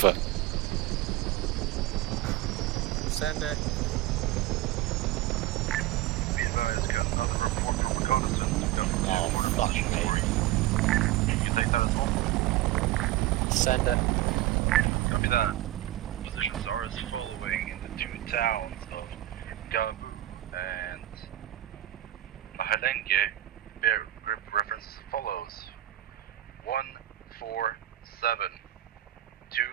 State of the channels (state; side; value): quieter; left; 15.1 dB